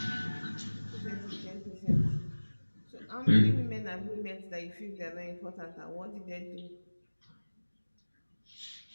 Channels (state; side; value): inverted; both; correlation -1.00